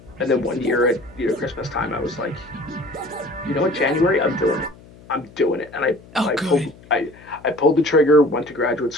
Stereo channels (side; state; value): left; noise; hum, 23 dB below the sound